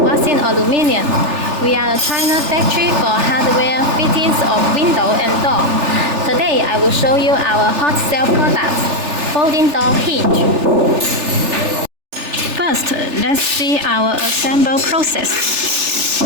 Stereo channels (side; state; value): left; late; 3.4 ms